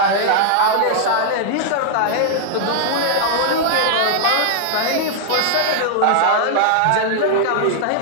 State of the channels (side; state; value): both; different; correlation -0.01